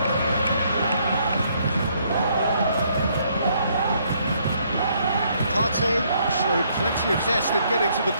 Partey showed plenty of zest in getting to the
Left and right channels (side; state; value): both; inverted; correlation -0.69